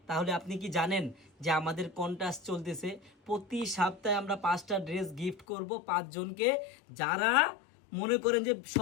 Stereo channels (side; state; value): right; drops out; at 5.5 s